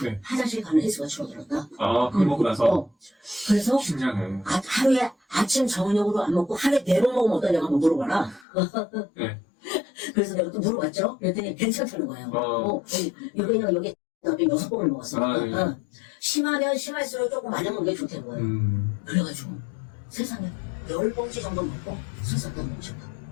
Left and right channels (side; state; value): right; drops out; at 8.5 s